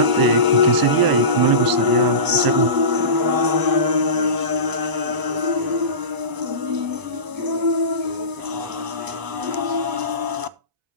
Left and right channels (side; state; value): left; late; 1.0 ms